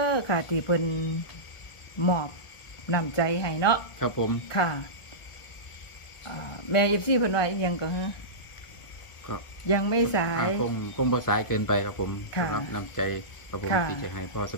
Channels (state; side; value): late; right; 1.4 ms